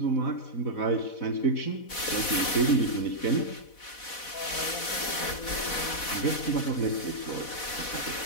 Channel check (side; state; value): right; late; 4.1 ms